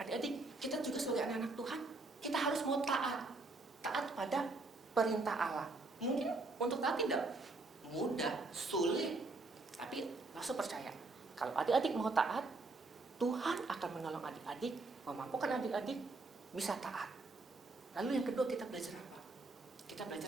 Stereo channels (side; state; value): left; quieter; 3.3 dB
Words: kita juga sebagai anak-anak Tuhan, kita harus mau taat. Taat pada perintah Allah. Mungkin untuk taat tidak mudah, sulit, tapi langsung percaya. Kalau adik-adik mau taat, Tuhan akan menolong adik-adik, memampukan adik-adik bisa taat. Lalu yang kedua kita belajar apa? Kita belajar